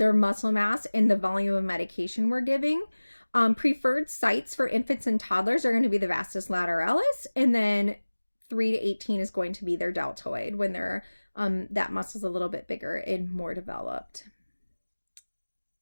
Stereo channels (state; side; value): inverted; both; correlation -1.00